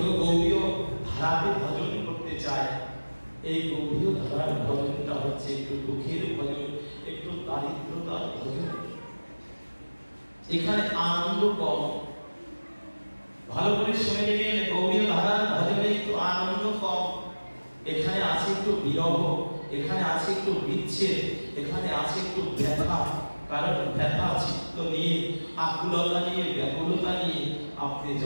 গৌরীয় ধারাতে ভজন করতে চায়, এই গৌরীয় ধারার ভজনটা হচ্ছে একটু দুঃখের ভজন, একটু দারিদ্রতার ভজন। এখানে আনন্দ কম। ভালো করে শুনে নেবেন, গৌরীয় ধারার ভজনে একটু আনন্দ কম। এখানে আছে একটু বিরহ, এখানে আছে একটু বিচ্ছেদ, এখানে আছে একটু ব্যথা। কারণ ব্যথা চিত্ত নিয়ে, আকুলতা নিয়ে, ব্যাকুলতা নিয়ে আপনি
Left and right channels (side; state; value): both; inverted; correlation -1.00